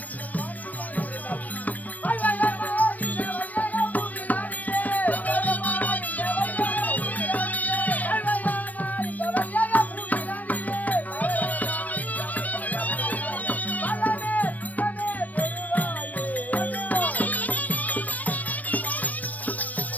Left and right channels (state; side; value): late; right; 0.078 ms